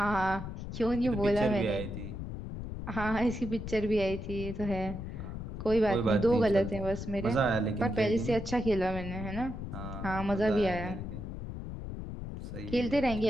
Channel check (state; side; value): noise; left; rumble, 7 dB below the sound